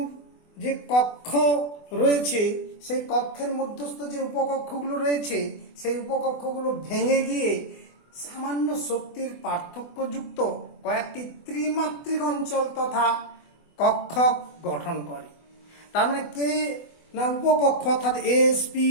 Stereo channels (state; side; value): late; right; 24 ms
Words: যে কক্ষ রয়েছে, সেই কক্ষের মধ্যস্থ যে উপকক্ষগুলো রয়েছে, সেই উপকক্ষগুলো ভেঙে গিয়ে সামান্য শক্তির পার্থক্যযুক্ত কয়েকটি ত্রিমাত্রিক অঞ্চল তথা কক্ষ গঠন করে। তার মানে কে না উপকক্ষ অর্থাৎ এস পি